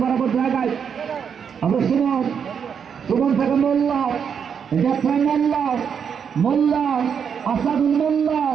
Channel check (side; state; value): left; quieter; 7.2 dB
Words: বরাবর জায়গায় আমরা সুমন, সুমন থেকে মোল্লা, জাফরান মোল্লা, মোল্লা, আসাদুল মোল্লা,